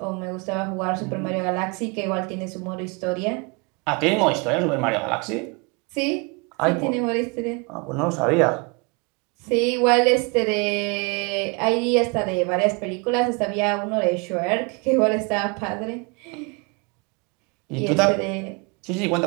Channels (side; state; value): left; quieter; 30.4 dB